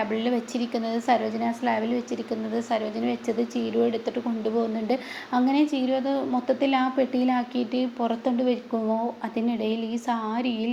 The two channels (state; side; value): identical; both; correlation 1.00